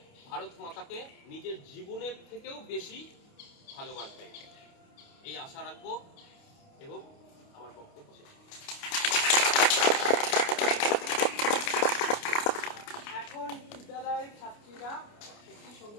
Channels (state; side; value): late; right; 29 ms